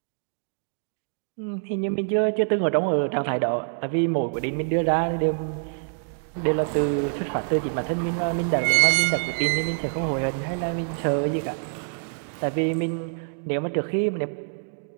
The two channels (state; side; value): silent; left; digital silence